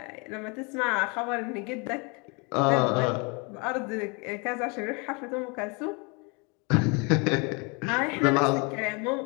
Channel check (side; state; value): right; quieter; 31.1 dB